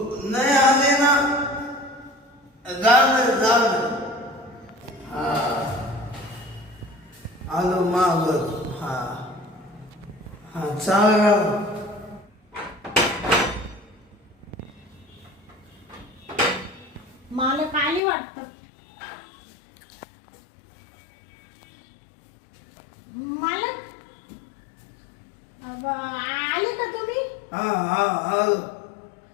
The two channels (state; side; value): drops out; right; at 18.0 s